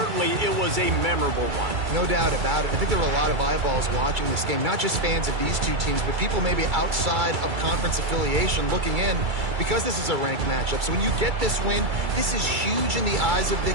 it was a memorable one. No doubt about it. I think there were a lot of eyeballs watching this game, not just fans of these two teams, but people maybe outside of conference affiliation looking in because this is a ranked matchup. So when you get this win, this is huge in the eyes of the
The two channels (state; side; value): late; left; 2.3 ms